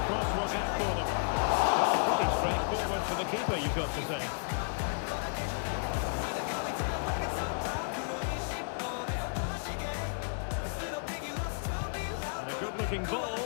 Cross work out for them. Well, pretty straightforward for the keeper, you've got to say. And a good-looking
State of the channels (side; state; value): right; silent; digital silence